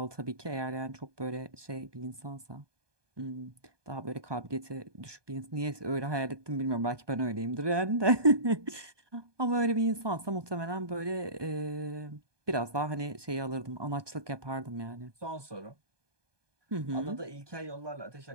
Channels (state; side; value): late; left; 1.2 ms